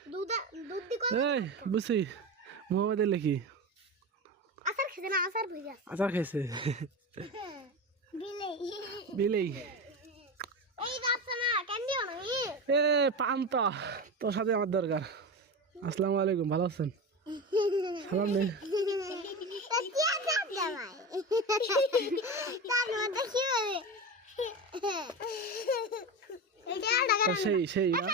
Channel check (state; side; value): normal; both; correlation 0.23